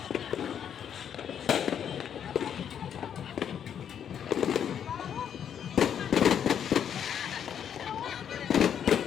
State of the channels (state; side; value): quieter; right; 8.7 dB